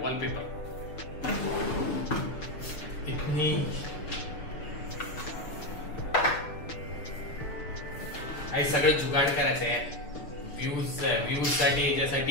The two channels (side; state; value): right; late; 6.8 ms